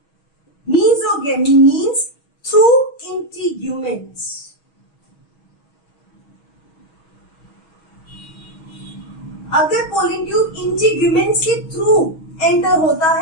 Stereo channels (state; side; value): late; right; 6.3 ms